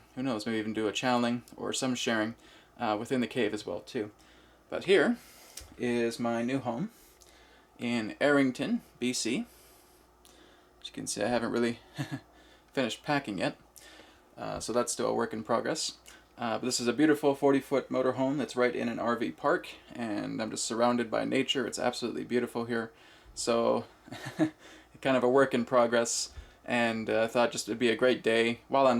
who knows, maybe even do a channeling or some sharing within the cave as well too. But here is my new home in Arrington, BC. As you can see, I haven't really finished packing yet, so that's still a work in progress. But this is a beautiful 40-foot motorhome that's right in an RV park, and I'm just surrounded by nature. It's absolutely beautiful here. So kind of a work in progress, and I thought just it'd be a great day while I'm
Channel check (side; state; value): both; identical; correlation 1.00